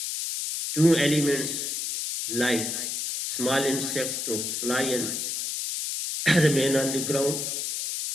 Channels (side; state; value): left; noise; hiss, 3 dB below the sound